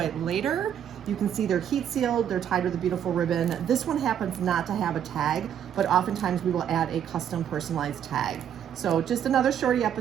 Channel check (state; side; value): quieter; left; 9.4 dB